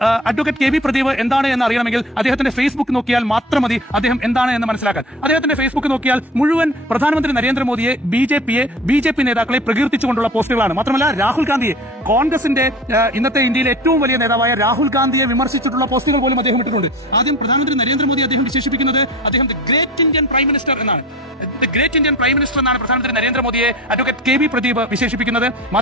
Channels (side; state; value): both; normal; correlation 0.38